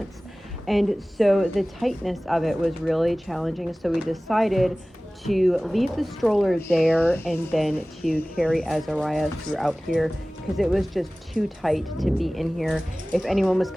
And so the tightness of it was really challenging, so we decided to leave the stroller there and then to carry Azariah throughout here because it was just too tight to be in here. If anyone was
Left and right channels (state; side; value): normal; both; correlation 0.98